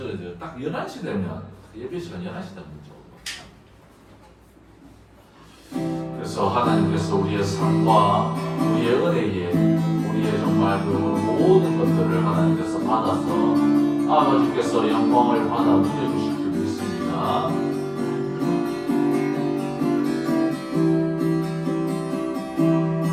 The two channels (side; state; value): both; identical; correlation 1.00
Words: 딱 11시 되면 예배 시간 11시 되면 문자 오더라고요. 그래서 하나님께서 우리의 삶과 우리의 은혜에 우리의 정말 그 모든 것들을 하나님께서 받아서 아버지께서 영광을 받아 누려주실 줄 믿습니다.